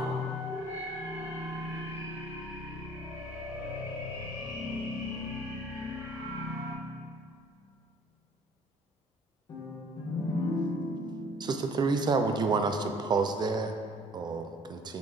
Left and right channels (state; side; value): normal; both; correlation 0.55